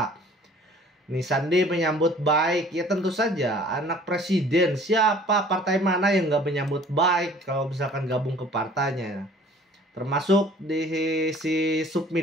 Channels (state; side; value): normal; both; correlation 0.52